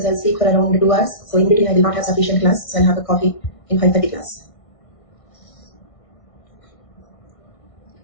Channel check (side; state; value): right; late; 1.6 ms